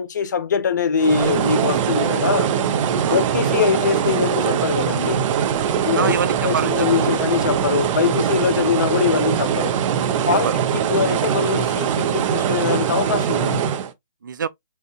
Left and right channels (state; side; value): inverted; both; correlation -0.34